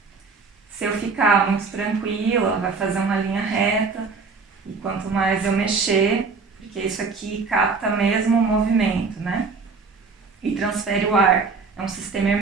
Se eu ficar muito tranquila, ela vai fazer uma linha reta, e quanto mais eu mexer, porque isso aqui capta mesmo o movimento, né? E transfere o ar. É um sistema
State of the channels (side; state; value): left; quieter; 4.6 dB